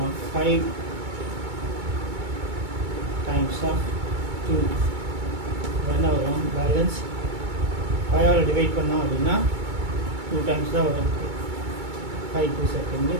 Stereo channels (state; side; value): late; left; 2.2 ms